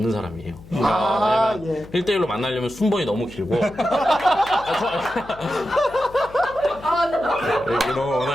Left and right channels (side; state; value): left; noise; hum, 20 dB below the sound